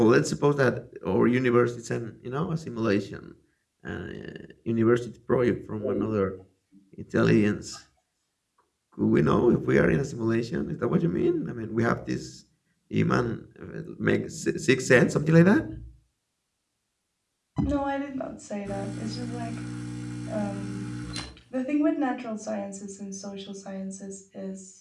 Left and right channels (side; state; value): both; identical; correlation 1.00